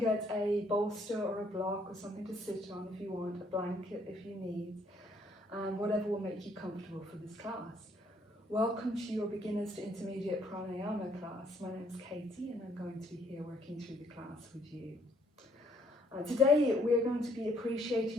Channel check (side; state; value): both; normal; correlation 0.66